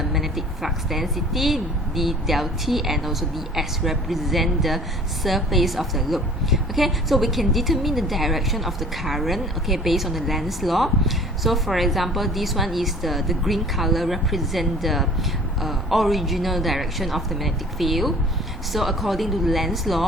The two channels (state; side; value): normal; both; correlation 0.48